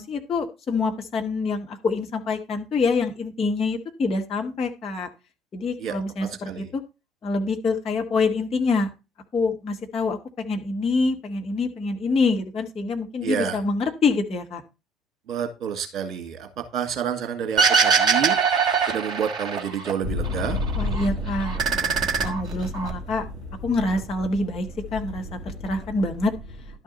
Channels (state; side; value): normal; both; correlation 0.60